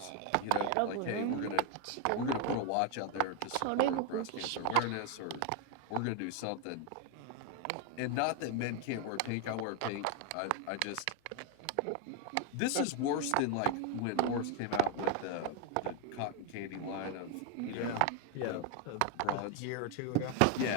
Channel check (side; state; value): both; different; correlation 0.01